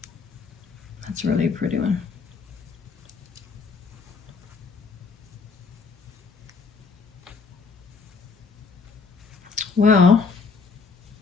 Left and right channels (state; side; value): quieter; right; 5.0 dB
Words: That's a really pretty one. Well,